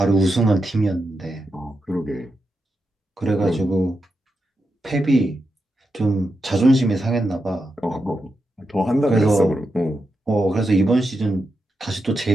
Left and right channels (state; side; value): normal; both; correlation 0.87